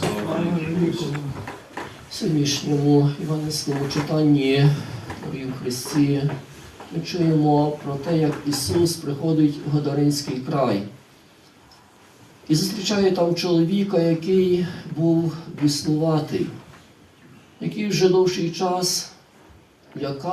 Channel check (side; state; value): both; identical; correlation 1.00